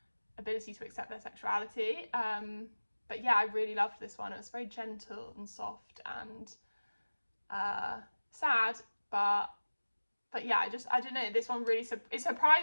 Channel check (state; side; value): inverted; both; correlation -1.00